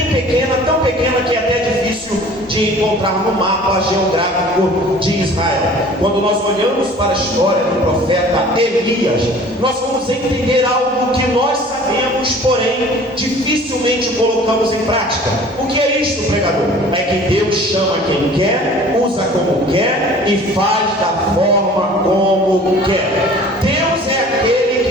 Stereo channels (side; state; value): both; normal; correlation 0.47